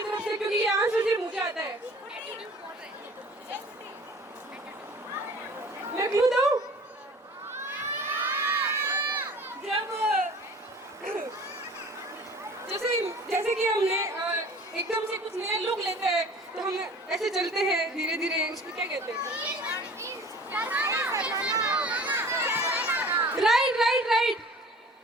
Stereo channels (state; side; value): normal; both; correlation 0.46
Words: तरफ से क्योंकि ये आंसर सिर्फ मुझे आता है मैं क्लू दूं जैसे कि हमने एकदम से कुछ नया लुक लेते हैं तो हम ऐसे चलते हैं धीरे धीरे उसको क्या कहते हैं राइट